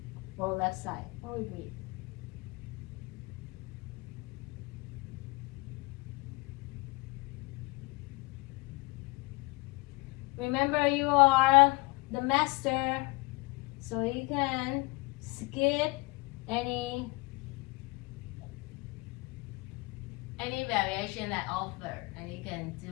or left side. Or we breathe. Remember, you are the master, so you can skip any variation that offer, and you can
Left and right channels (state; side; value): quieter; right; 25.6 dB